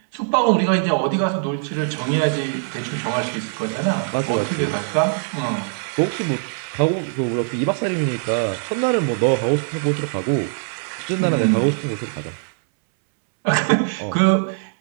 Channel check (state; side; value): silent; left; 65 dB below the other